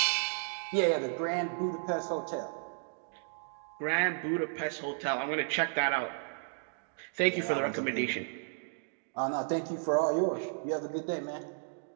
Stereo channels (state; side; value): silent; left; digital silence